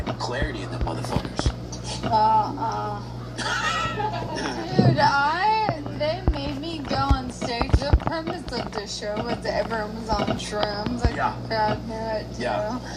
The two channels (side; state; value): both; identical; correlation 1.00